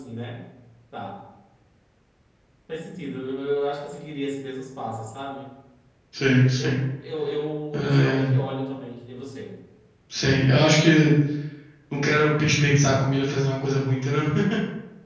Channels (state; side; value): identical; both; correlation 1.00